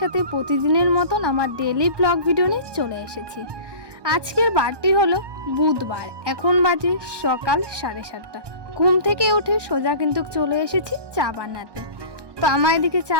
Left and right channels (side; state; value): left; late; 1.2 ms